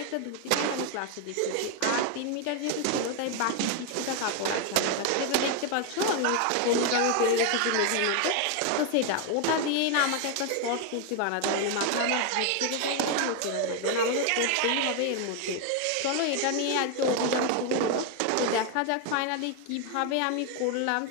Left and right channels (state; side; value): different; both; correlation 0.01